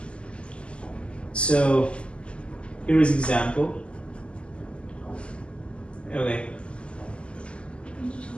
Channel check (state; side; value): late; right; 0.053 ms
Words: So here is example. Okay.